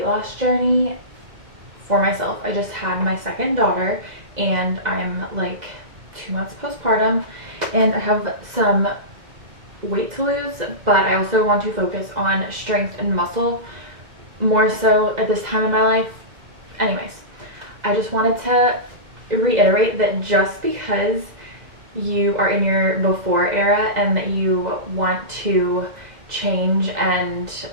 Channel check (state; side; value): late; left; 2.0 ms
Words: loss journey for myself. I just had my second daughter and I'm like 2 months postpartum and I have some weight to lose, but I also want to focus on strength and muscle more so at this time in my life. Anyways, I just wanted to reiterate that just because you are in your before era and that you want to change and